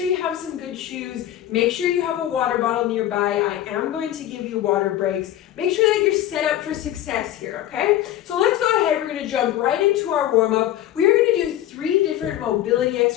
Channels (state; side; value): quieter; right; 12.7 dB